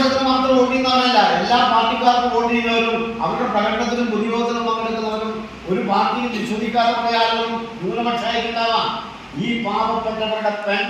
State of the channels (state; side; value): identical; both; correlation 1.00